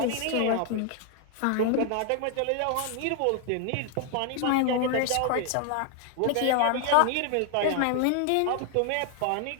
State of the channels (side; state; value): both; different; correlation 0.00